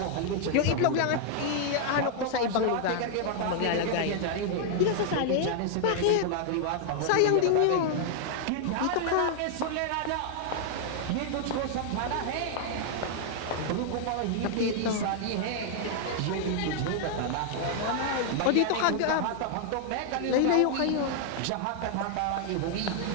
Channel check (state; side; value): different; both; correlation 0.00